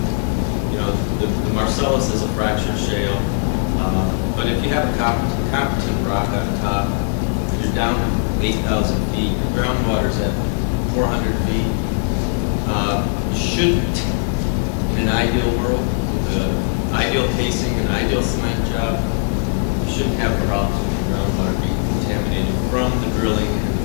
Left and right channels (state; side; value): silent; right; 66 dB below the other